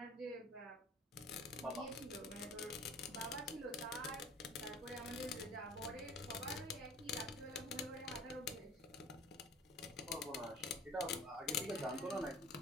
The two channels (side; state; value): both; normal; correlation 0.47